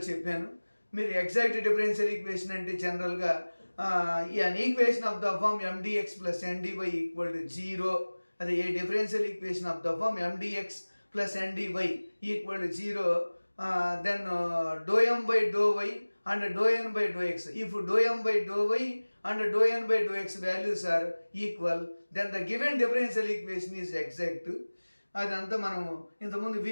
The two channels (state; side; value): inverted; both; correlation -1.00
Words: చెప్పాను. మీరు ఎగ్జాక్ట్ డిఫరెన్షియల్ ఈక్వేషన్ అంటే జనరల్గా an equation of the form M dx plus N dy equal to zero. అదే a differential equation of the form M dx plus N dy equal to zero, then dou m by dou y and dou n by dou x. If dou m by dou y and dou n by dou x values are equal, then the given differential equation is exact. అదంతా మనము ఇంతకుముందు